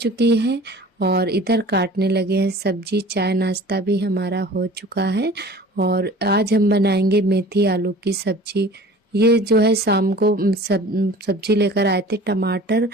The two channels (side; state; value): both; normal; correlation 0.44